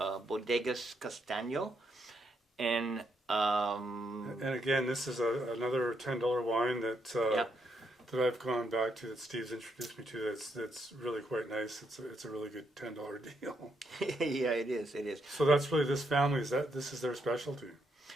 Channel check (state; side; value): normal; both; correlation 0.77